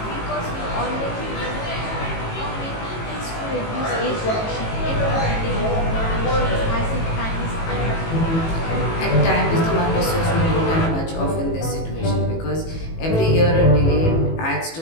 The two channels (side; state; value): right; late; 18 ms